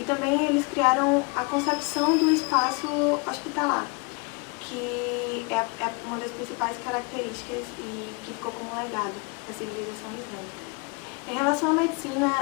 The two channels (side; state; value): right; quieter; 31.7 dB